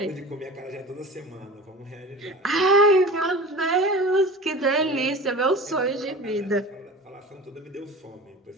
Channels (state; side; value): normal; both; correlation 0.36